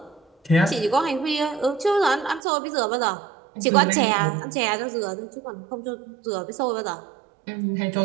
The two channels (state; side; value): drops out; left; at 2.4 s